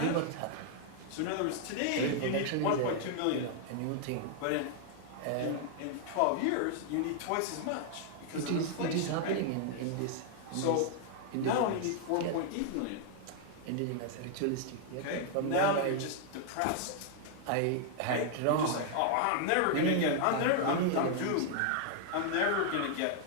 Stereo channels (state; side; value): different; both; correlation 0.00